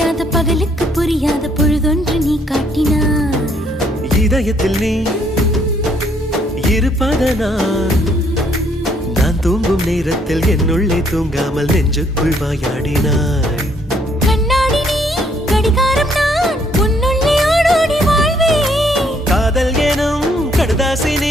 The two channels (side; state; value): both; normal; correlation 0.67